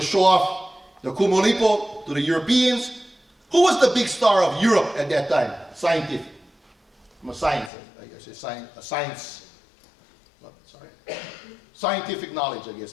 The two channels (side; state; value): right; drops out; at 7.7 s